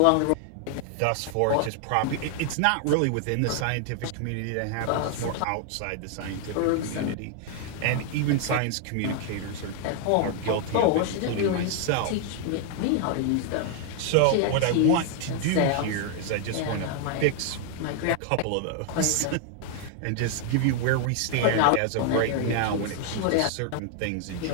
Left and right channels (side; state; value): both; different; correlation 0.00